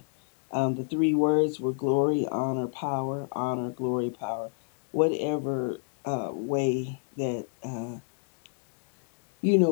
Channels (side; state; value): right; silent; digital silence